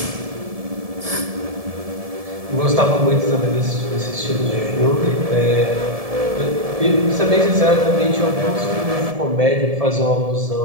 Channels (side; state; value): left; late; 1.7 ms